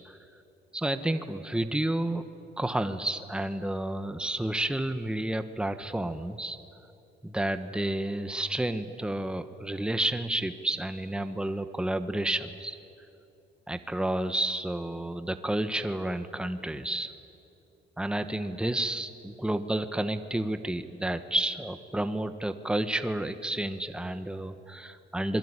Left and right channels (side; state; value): both; normal; correlation 0.83